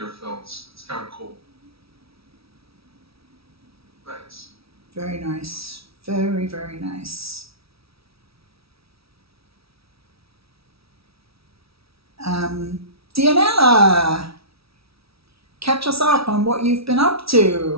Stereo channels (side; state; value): left; late; 0.76 ms